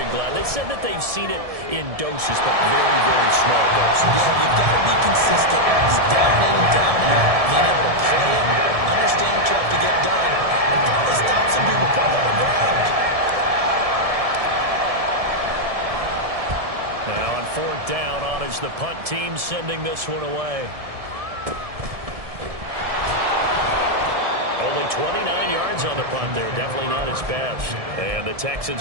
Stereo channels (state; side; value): late; left; 1.7 ms